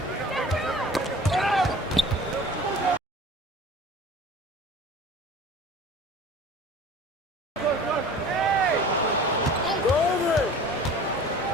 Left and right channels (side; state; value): both; normal; correlation 0.43